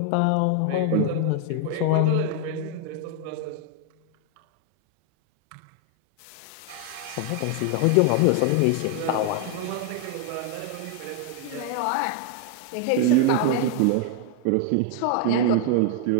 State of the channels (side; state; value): both; different; correlation 0.00